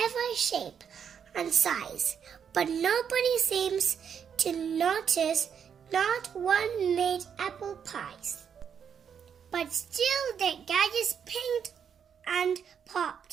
shape and size, but nobody seems to notice not one made apple pies. But still the gadgets pinged and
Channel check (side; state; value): left; quieter; 7.6 dB